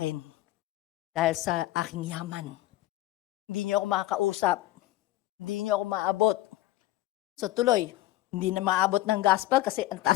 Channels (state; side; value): quieter; right; 16.1 dB